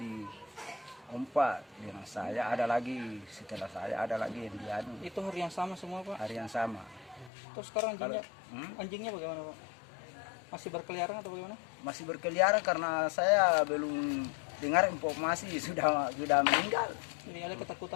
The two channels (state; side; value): drops out; right; at 7.3 s